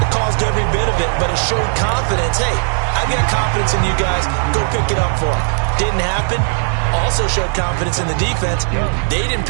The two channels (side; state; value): left; silent; 69 dB below the other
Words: It caused every bit of it, but it showed confidence. Hey, I've got confidence in you guys. Go pick it up for them. Didn't happen. Also showed confidence in the defense. They didn't